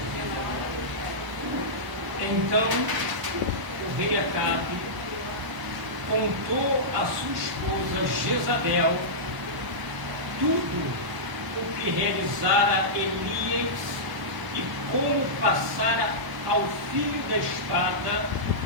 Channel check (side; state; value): left; late; 1.0 ms